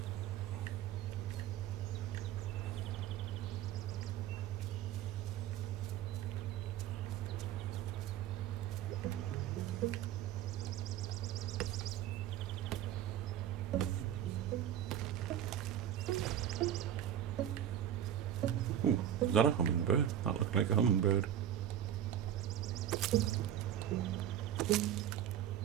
that a hummingbird? That looked like a hummingbird.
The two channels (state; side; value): quieter; left; 10.6 dB